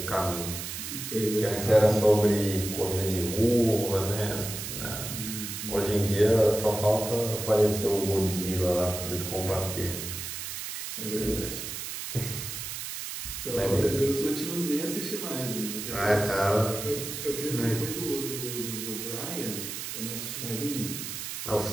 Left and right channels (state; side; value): noise; right; hiss, 6 dB below the sound